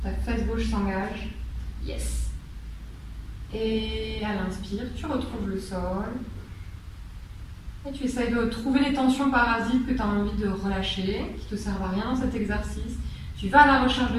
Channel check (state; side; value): identical; both; correlation 1.00